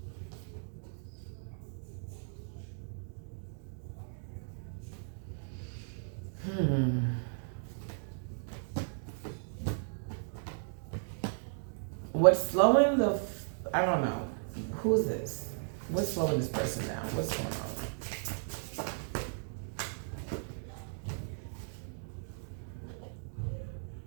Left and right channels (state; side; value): silent; left; digital silence